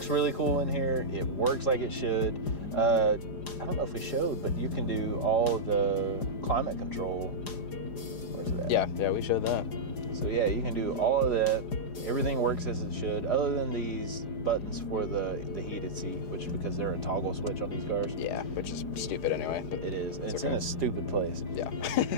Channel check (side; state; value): right; late; 4.9 ms